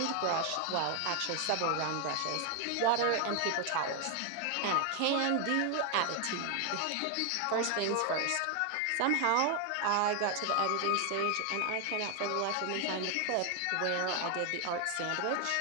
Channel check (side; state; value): both; different; correlation 0.00